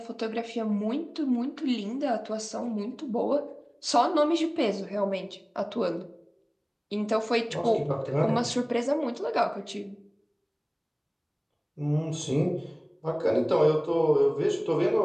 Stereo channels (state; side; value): identical; both; correlation 1.00